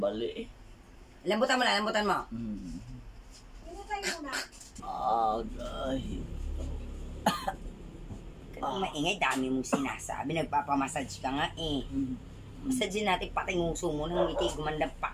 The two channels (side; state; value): both; identical; correlation 1.00